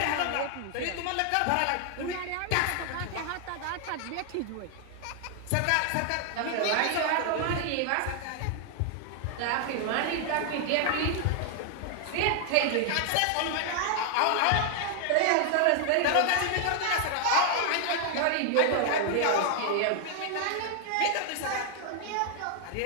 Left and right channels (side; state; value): both; different; correlation 0.00